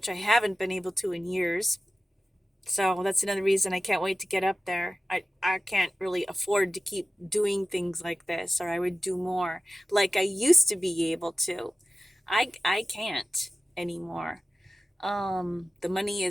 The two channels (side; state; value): both; normal; correlation 0.94